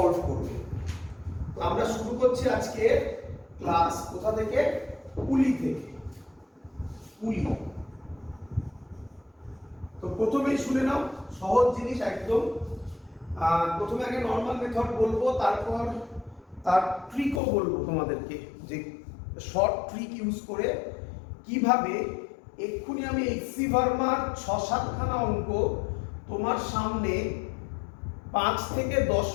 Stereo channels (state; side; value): drops out; right; at 17.4 s